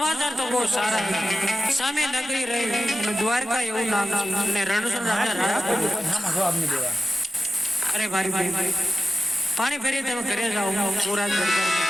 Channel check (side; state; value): both; normal; correlation 0.93